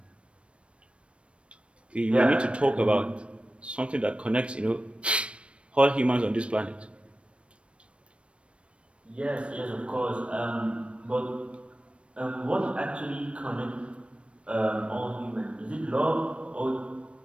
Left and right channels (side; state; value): left; late; 0.060 ms